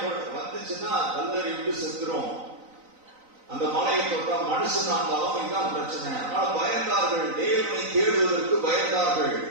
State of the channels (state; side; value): late; left; 3.9 ms